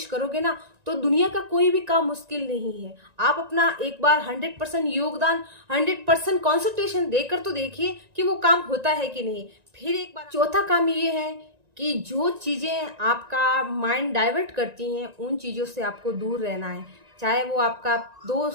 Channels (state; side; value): late; left; 1.9 ms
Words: करोगे ना तो दुनिया का कोई भी काम मुश्किल नहीं है। आप अपना एक बार 100% योगदान, 100% कॉन्सेंट्रेशन देकर तो देखिए कि वो काम होता है कि नहीं। फिर एक बार चौथा काम ये है कि जो चीजें आपका माइंड डाइवर्ट करती हैं उन चीजों से आपको दूर रहना है। चाहे वो आपका